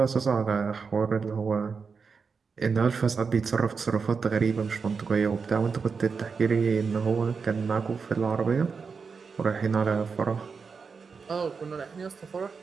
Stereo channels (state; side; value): quieter; left; 5.3 dB